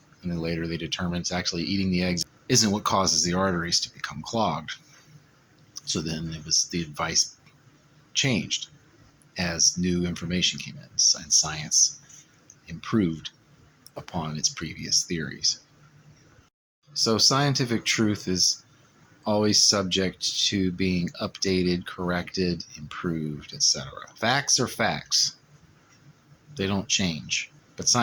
And then later they determined it's actually eating the eggs isn't what causes the arteries to become clogged. So then the advice changed as new information came in and science improved upon its previous theories. So scientific truth is always subject to being updated, corrected, improved, etc. Facts are facts. They don't change, but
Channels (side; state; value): both; identical; correlation 1.00